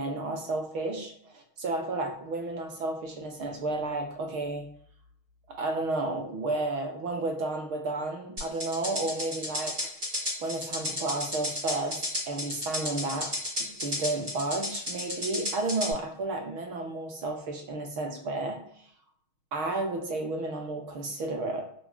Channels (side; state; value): left; late; 6.4 ms